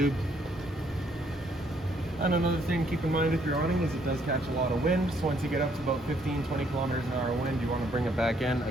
And another thing to keep in mind with your awning is it does catch a lot of wind. So once you get up to about 15-20 kilometers an hour wind, you want to bring it back in.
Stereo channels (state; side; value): normal; both; correlation 0.68